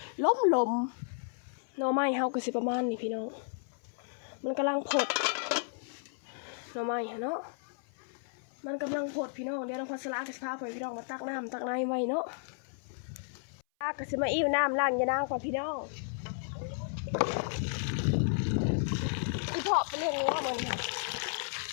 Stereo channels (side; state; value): right; silent; 56 dB below the other